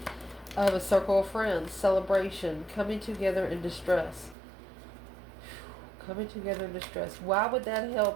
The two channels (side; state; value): left; drops out; at 4.4 s